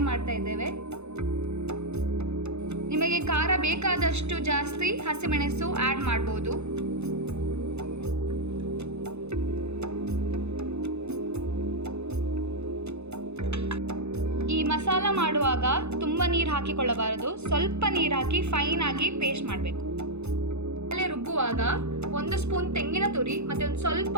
ಮಾಡ್ತಾ ಇದ್ದೇವೆ. ನಿಮಗೆ ಖಾರ ಬೇಕಾದಷ್ಟು ಜಾಸ್ತಿ ಹಸಿಮೆಣಸು ಆ್ಯಡ್ ಮಾಡ್ಬೋದು. ಈ ಮಸಾಲ ಮಾಡುವಾಗ ತುಂಬ ನೀರು ಹಾಕಿಕೊಳ್ಳಬಾರದು, ಸ್ವಲ್ಪ ನೀರು ಹಾಕಿ ಫೈನ್ ಆಗಿ ಪೇಸ್ಟ್ ಮಾಡಬೇಕು. ರುಬ್ಬುವಾಗ 1 ಸ್ಪೂನ್ ತೆಂಗಿನ ತುರಿ ಮತ್ತು ಒಂದು ಸ್ವಲ್ಪ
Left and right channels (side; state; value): left; late; 0.81 ms